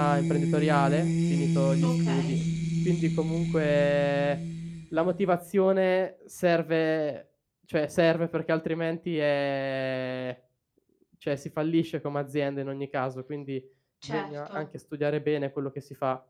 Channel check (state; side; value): identical; both; correlation 1.00